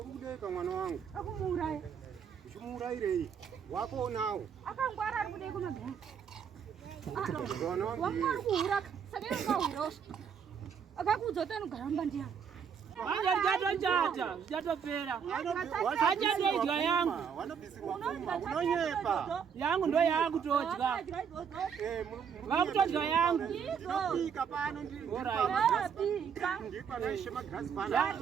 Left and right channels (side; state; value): left; quieter; 7.2 dB